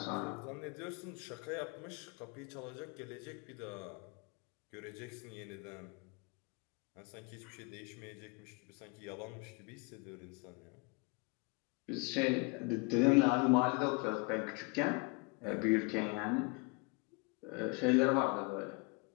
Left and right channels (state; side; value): quieter; right; 30.3 dB